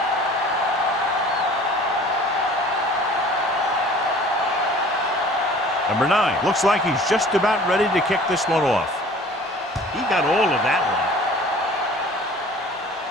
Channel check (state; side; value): normal; both; correlation 0.47